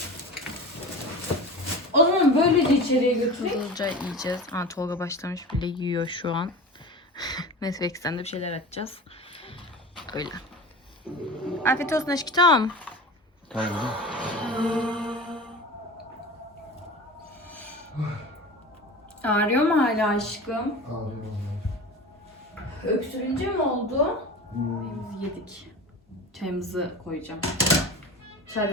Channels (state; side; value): normal; both; correlation 0.33